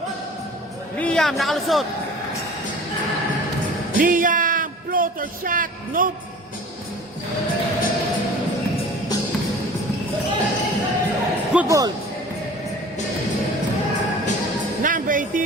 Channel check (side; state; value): both; normal; correlation 0.43